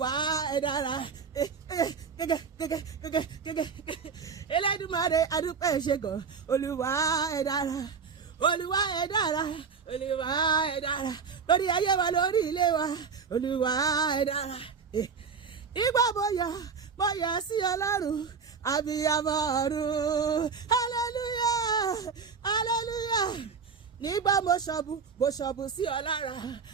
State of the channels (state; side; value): quieter; left; 5.9 dB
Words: ẹ dára gẹ́gẹ́ Elédùmarè àdúpẹ́ ṣe gan Olúwa ẹ dára Olúwa ẹ dára Olúwa ẹ dára lórí ayé wa lórí ilé wa Olúwa ẹ dára ìgbà mo yọ̀ sí Ọlọ́run abiyamọ ọ̀run hallelujah hallelujah nígbà mo ṣọ̀bù sí ọ lára